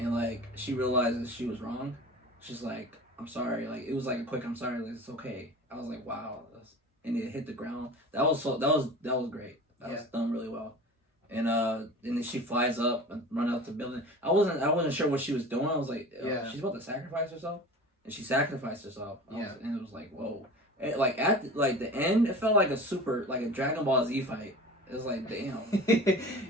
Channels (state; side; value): normal; both; correlation 0.37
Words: like she realizes she was wrong. She's like, I'm sorry. Like it was like a quick, I'm sorry. Like it's okay. I was like, wow. And it hit the ground. That was great. That was done really well. And then she flies up and run out the building. I wasn't sure what she was doing. I was like, she's about to sacrifice herself, and she sacrificed herself. And it was like, whoa. Like at the end, it felt like a Dragon Ball Z fight. It was like, damn.